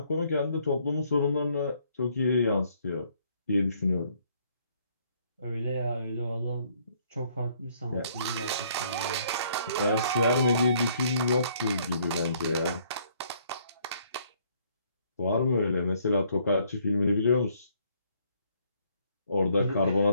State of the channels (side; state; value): both; inverted; correlation -0.66